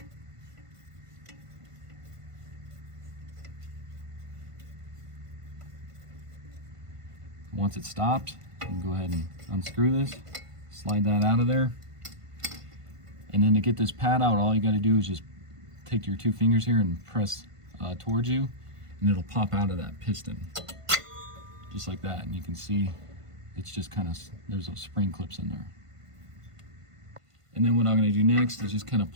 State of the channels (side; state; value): left; late; 1.5 ms